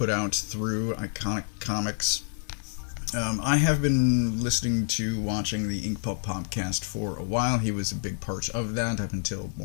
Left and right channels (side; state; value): right; silent; 57 dB below the other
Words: out through Iconic Comics. I have been listening to watching the Ink Pulp podcast for a while. He was a big part of that up until